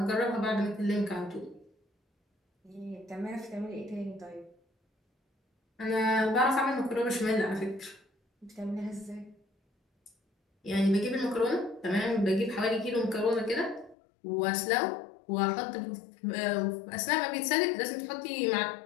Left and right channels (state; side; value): drops out; right; at 14.0 s